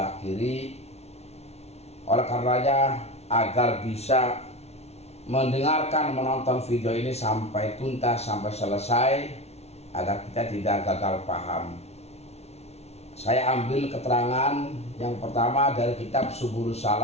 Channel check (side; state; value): right; late; 0.31 ms